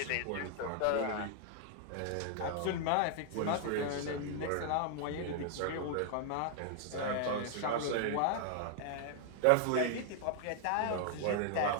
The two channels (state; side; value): different; both; correlation 0.00